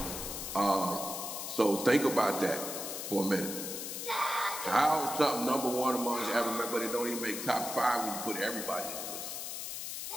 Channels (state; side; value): noise; left; hiss, 6 dB below the sound